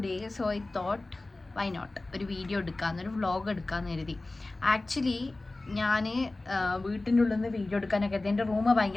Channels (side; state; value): right; quieter; 3.0 dB